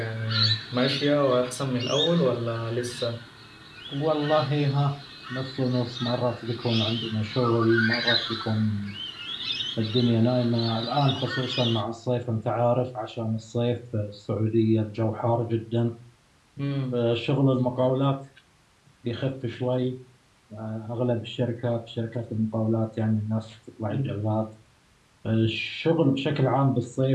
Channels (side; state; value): both; identical; correlation 1.00